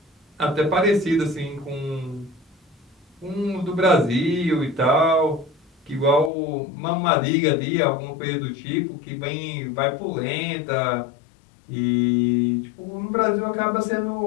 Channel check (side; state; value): right; drops out; at 6.3 s